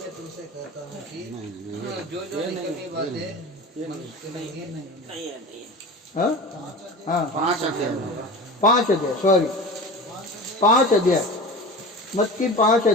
तुमसे कहता हूँ कि जो निकलनी बातें हाँ हाँ 5 अध्याय 5 अध्याय, सॉरी 5 अध्याय, मत्ती 5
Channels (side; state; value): both; normal; correlation 0.33